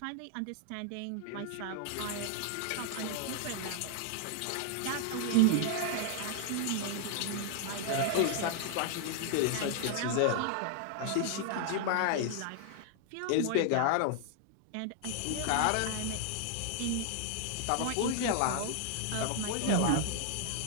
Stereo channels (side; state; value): both; different; correlation 0.00